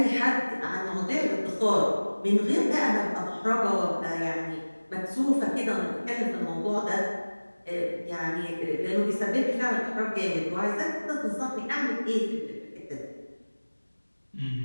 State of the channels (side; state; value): both; inverted; correlation -1.00